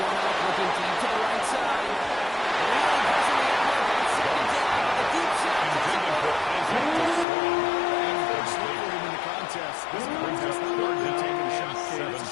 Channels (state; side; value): drops out; right; at 7.2 s